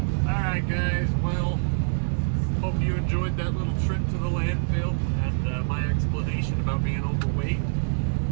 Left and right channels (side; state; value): left; silent; digital silence